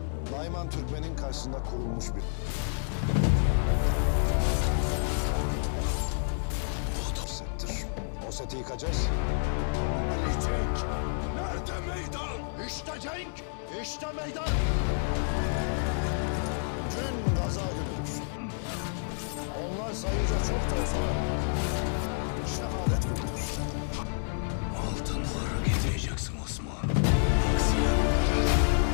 Nayman Türkmen'in karşısında kurulmuş bir... Bu settir. O seti yıkacağız. Ali Cenk! Nerede meydan? İşte Cenk! İşte meydan! Gün gaza günüdür. Onlar sayıca çok da olsa şehadet günüdür. Altınları getireceksin Osman.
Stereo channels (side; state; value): right; silent; digital silence